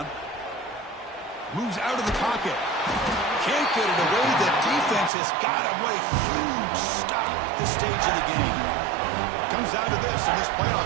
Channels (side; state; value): left; drops out; at 5.1 s